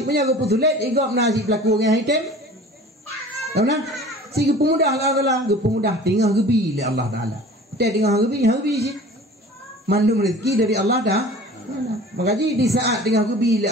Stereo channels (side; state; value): both; normal; correlation 0.43